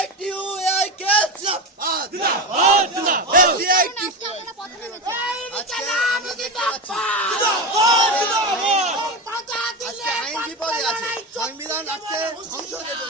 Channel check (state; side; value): normal; both; correlation 0.19